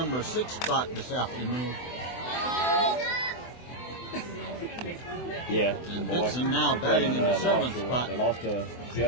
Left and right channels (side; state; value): right; late; 24 ms